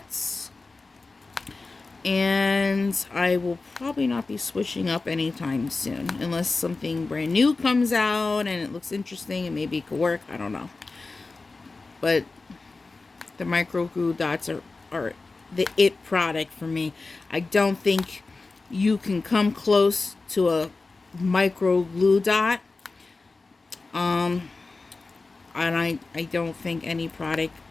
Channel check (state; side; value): quieter; right; 3.7 dB